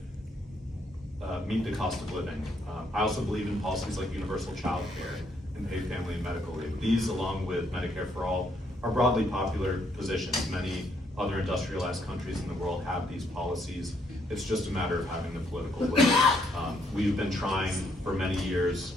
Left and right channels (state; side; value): normal; both; correlation 0.71